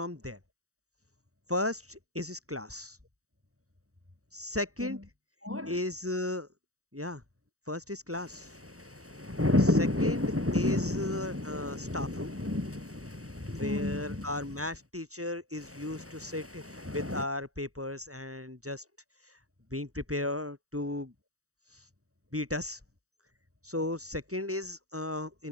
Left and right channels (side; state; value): left; late; 0.65 ms